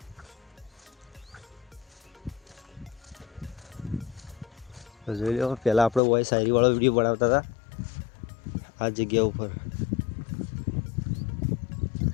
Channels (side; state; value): right; drops out; at 6.0 s